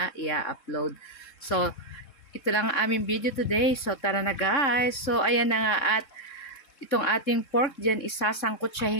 i-upload. So, ito lang ang aming video today. So, tara na guys. So, ayan na nga at itong ating pork dyan,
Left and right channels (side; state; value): right; late; 3.6 ms